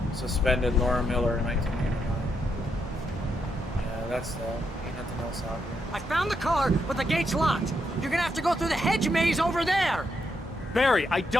Suspended Laura Miller in 1989. Yeah, that's that. Ain't nothing else out here. I found the car, but the gate's locked. You're gonna have to go through the hedge maze over there. Barry, I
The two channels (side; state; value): both; normal; correlation 0.80